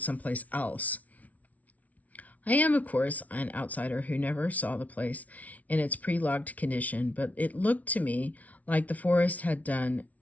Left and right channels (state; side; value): late; right; 0.071 ms